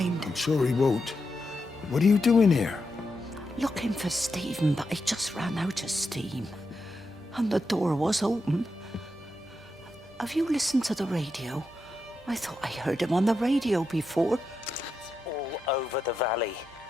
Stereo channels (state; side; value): normal; both; correlation 0.86